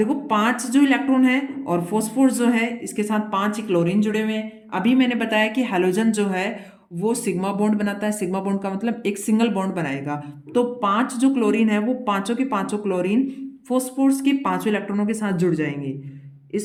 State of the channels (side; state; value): both; identical; correlation 1.00